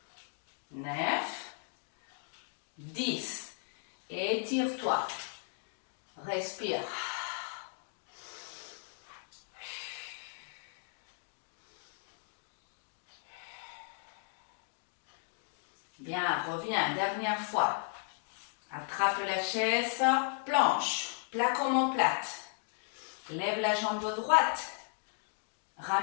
9, 10. Étire-toi. Respire. Bien, reviens, dernière fois. Attrape la chaise, planche, plaque omoplate. Lève la jambe droite.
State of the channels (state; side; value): silent; right; 54 dB below the other